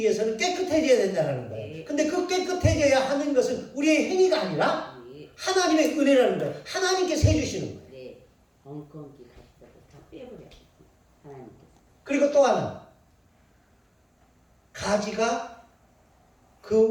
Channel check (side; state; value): both; identical; correlation 1.00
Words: 깨끗해져야 된다는 거예요. 근데 그 깨끗해져야 하는 것은 우리의 행위가 아니라 하나님의 은혜라는 거예요. 하나님께서 해주시는 거예요. 네. 엉겅기 가시다고 다 빼버려. 하나님께서. 그리고 또 하나. 가지가